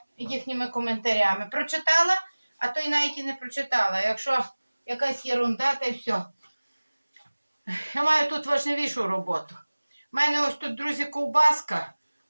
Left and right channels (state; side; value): inverted; both; correlation -1.00